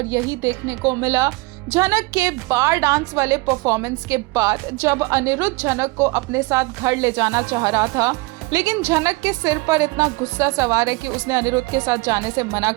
यही देखने को मिला झनक के बार डांस वाले परफॉर्मेंस के बाद, जब अनिरुद्ध झनक को अपने साथ घर ले जाना चाह रहा था, लेकिन झनक के सिर पर इतना गुस्सा सवार है कि उसने अनिरुद्ध के साथ जाने से मना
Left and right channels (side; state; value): left; quieter; 24.3 dB